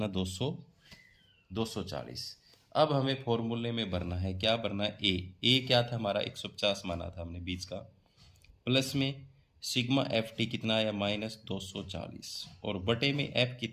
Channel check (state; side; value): identical; both; correlation 1.00